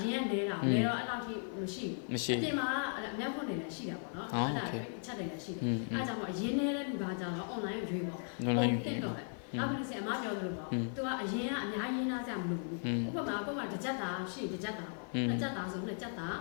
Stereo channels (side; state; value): right; silent; 53 dB below the other